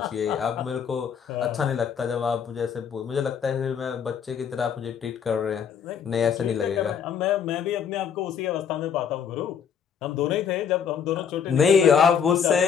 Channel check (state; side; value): quieter; right; 7.5 dB